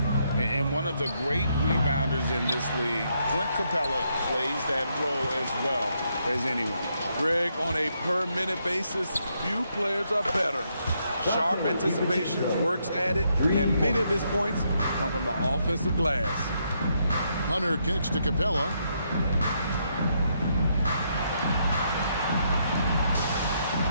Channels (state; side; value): inverted; both; correlation -0.76